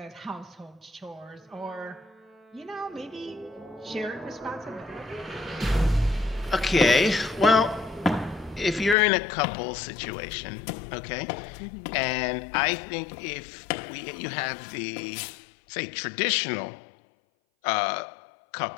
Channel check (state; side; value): drops out; right; at 9.0 s